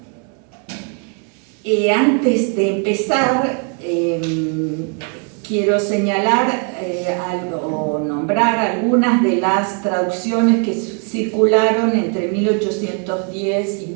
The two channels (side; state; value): left; quieter; 39.4 dB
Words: Antes de empezar, quiero señalar o nombrar algunas de las traducciones que circularon entre 1810 y